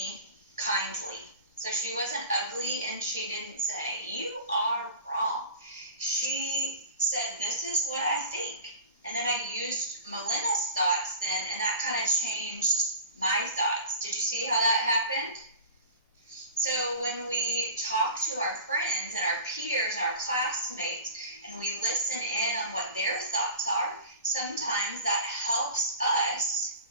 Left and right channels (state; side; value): inverted; both; correlation -0.37